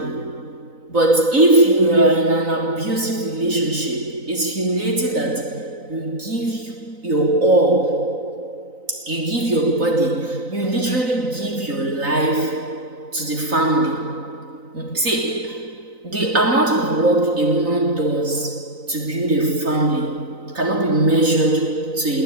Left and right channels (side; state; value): left; late; 3.9 ms